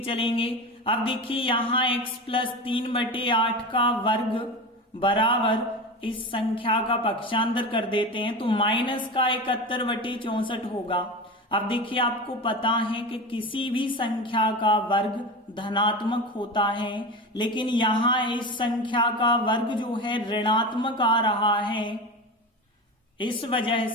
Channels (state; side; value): normal; both; correlation 0.26